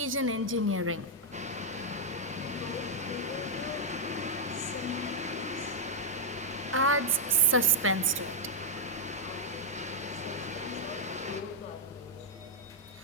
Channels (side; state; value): both; normal; correlation -0.02